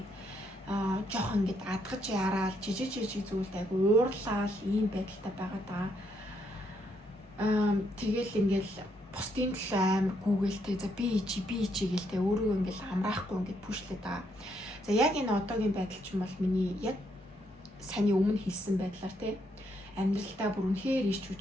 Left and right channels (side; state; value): both; normal; correlation 0.74